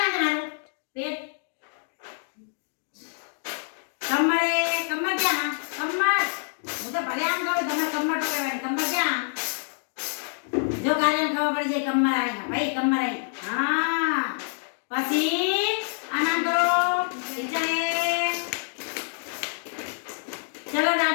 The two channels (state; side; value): silent; right; 60 dB below the other